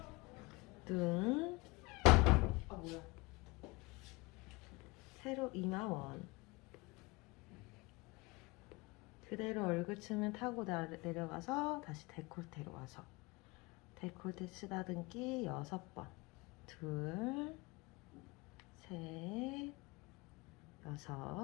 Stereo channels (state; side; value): quieter; right; 24.5 dB